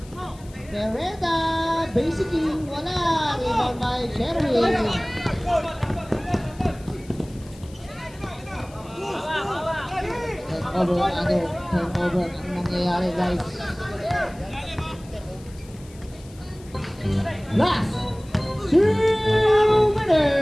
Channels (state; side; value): noise; left; hiss, 24 dB below the sound